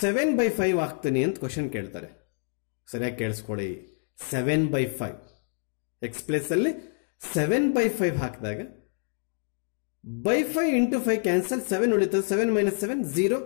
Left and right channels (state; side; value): silent; right; 58 dB below the other